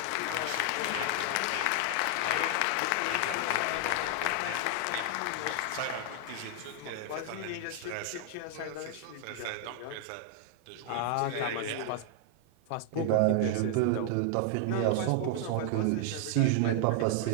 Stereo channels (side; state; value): both; different; correlation 0.00